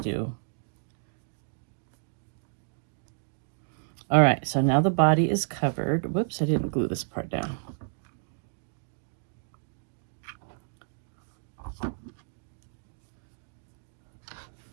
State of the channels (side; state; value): left; silent; digital silence